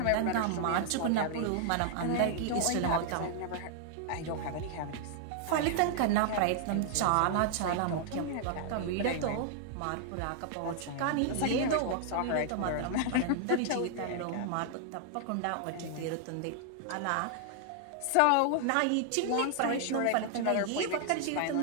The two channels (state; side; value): different; both; correlation 0.00